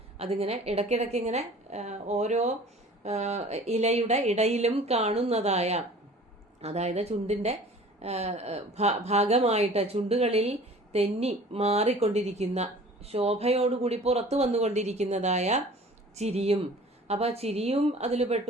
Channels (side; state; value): both; normal; correlation 0.46